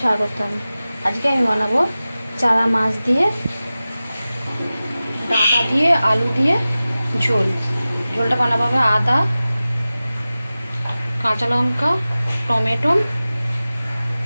স্বাগতম। আজকে আমি বানাবো চারা মাছ দিয়ে, ডাঁটা দিয়ে, আলু দিয়ে ঝোল। ঝোলটা বানাবো হবে আদা, কাঁচা লঙ্কা, টমেটো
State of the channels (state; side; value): inverted; both; correlation -0.96